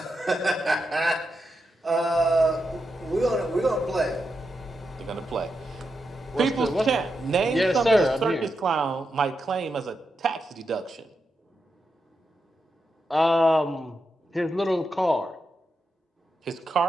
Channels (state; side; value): normal; both; correlation 0.86